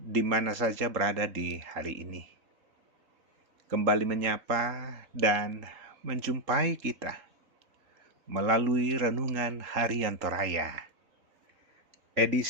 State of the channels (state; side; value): late; left; 3.7 ms